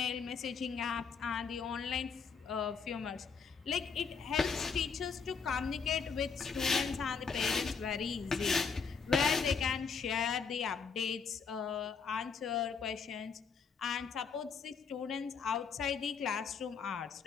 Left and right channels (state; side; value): quieter; right; 5.7 dB